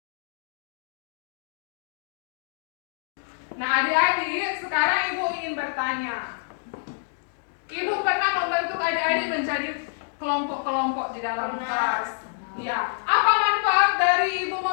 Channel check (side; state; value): right; silent; digital silence